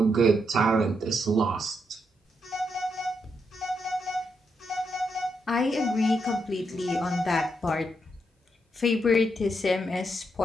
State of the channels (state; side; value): normal; both; correlation 0.80